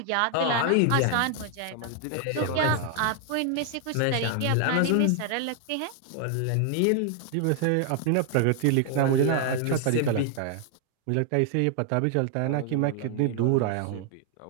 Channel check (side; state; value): both; different; correlation 0.00